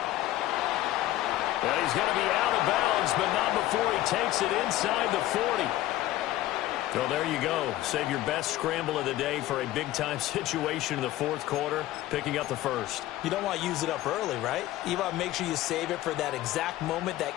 Well, he's going to be out of bounds, but not before he takes it inside the 40. So there you go. Save your best scramble of the day for a big-time situation in the 4th quarter, picking up the 1st. You don't want to use it up early, right? You want to make sure you save it for that exact moment,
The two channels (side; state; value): right; quieter; 15.1 dB